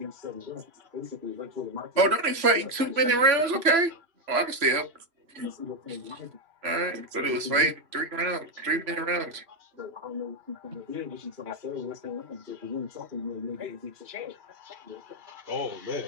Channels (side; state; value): left; late; 3.0 ms